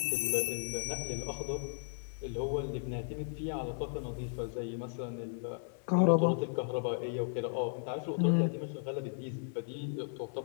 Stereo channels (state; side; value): silent; right; 54 dB below the other